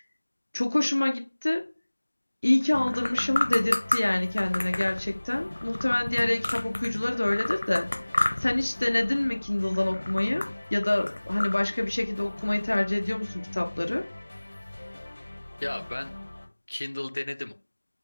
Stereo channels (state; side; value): inverted; both; correlation -1.00